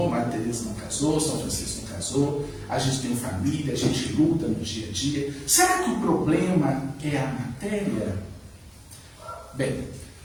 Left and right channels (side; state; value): both; identical; correlation 1.00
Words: Maria Teresa não casou, São Francisco não casou, a gente tem família, a gente luta no dia a dia. Será que o problema é a matéria? Bem,